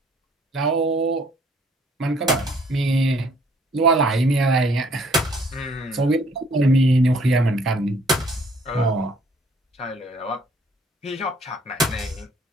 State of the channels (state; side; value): normal; both; correlation 0.61